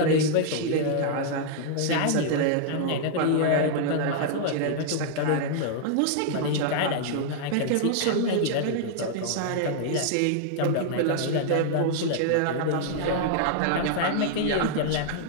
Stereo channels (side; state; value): both; different; correlation -0.01